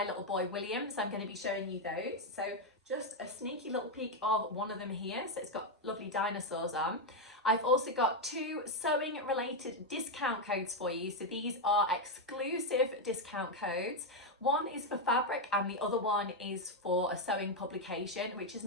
little boy William. So I'm going to be showing you those. So just a sneaky little peek of one of them here. So it's got lovely dinosaurs on. I've also got 2 sewing related discount codes for you. So these are exclusive discount codes. One is for fabric and the other one is for a sewing publication, which is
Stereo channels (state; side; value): normal; both; correlation 0.03